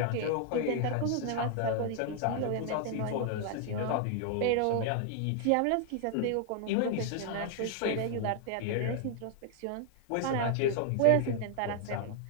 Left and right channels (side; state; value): both; different; correlation 0.00